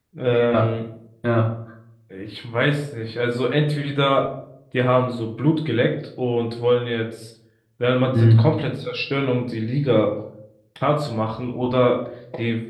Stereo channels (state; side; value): identical; both; correlation 1.00